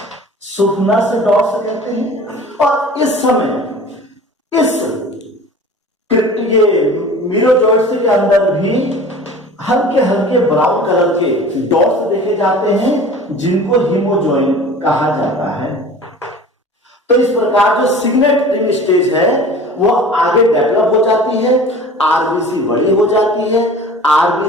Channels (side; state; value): both; normal; correlation 0.42